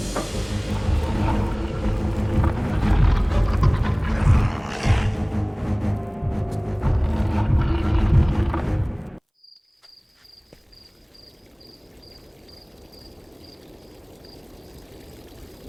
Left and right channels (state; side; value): identical; both; correlation 1.00